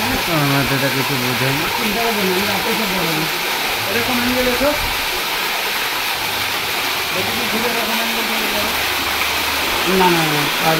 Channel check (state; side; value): identical; both; correlation 1.00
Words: আমাদের কিছু বোঝেন চিন্তা করবেন আমি রাতে সব বলবো এরকম অ্যাঙ্গেল এসো না না না